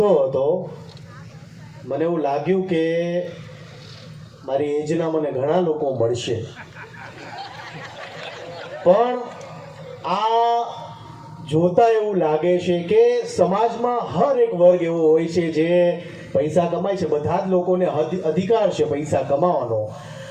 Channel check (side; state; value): both; identical; correlation 1.00